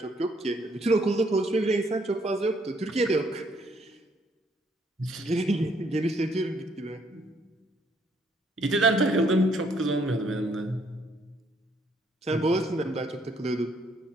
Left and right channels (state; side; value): normal; both; correlation 0.68